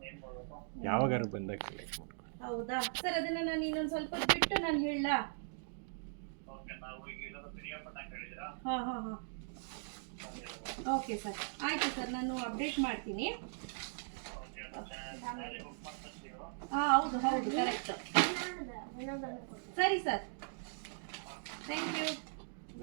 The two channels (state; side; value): silent; left; digital silence